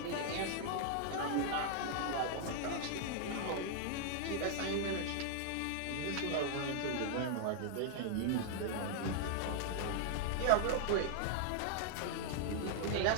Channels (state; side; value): different; both; correlation -0.01